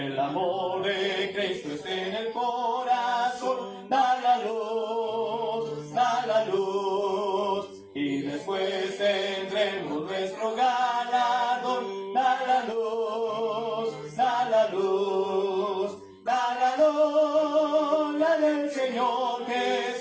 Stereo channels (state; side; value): identical; both; correlation 1.00